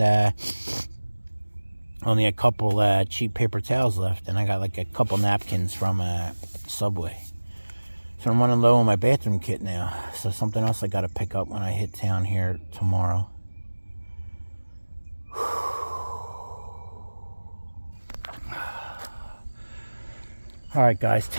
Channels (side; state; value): both; inverted; correlation -1.00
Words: only a couple cheap paper towels left, and I got like a couple napkins from Subway. So I'm running low on my bathroom kit now. So something else I got to pick up when I hit town here tomorrow. All right, guys,